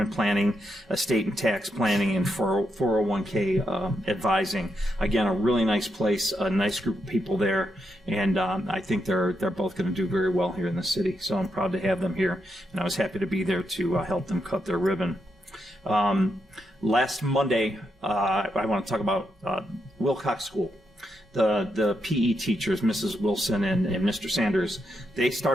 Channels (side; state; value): both; normal; correlation 0.81